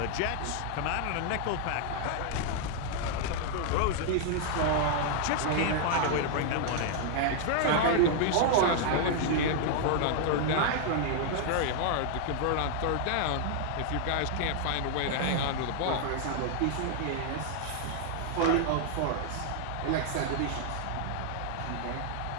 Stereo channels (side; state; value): both; different; correlation 0.00